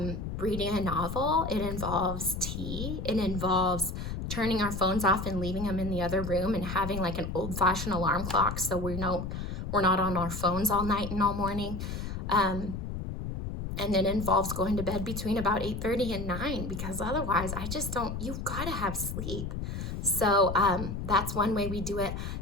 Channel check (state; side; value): noise; left; rumble, 5 dB below the sound